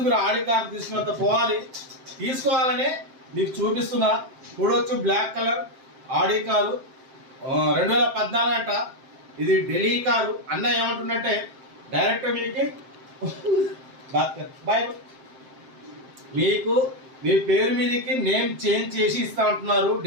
మీరు ఆడి కార్ తీసుకున్నంత తీసుకోవాలని మీకు చూపిస్తున్నా. చూడవచ్చు, బ్లాక్ కలర్ ఆడి కారు 2014 అంట. ఇది ఢిల్లీ కారు. అన్న ఏమంటుందంటే డైరెక్ట్ మీకు మీ పేరు మీదకి నేమ్ చేంజ్ చేసి ఇస్తా అంటున్నారు.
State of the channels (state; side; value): late; left; 7.6 ms